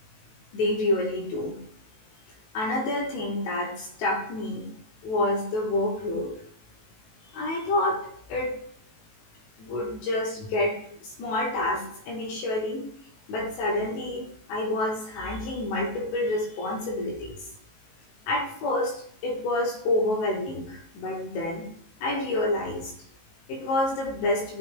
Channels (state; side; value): late; right; 18 ms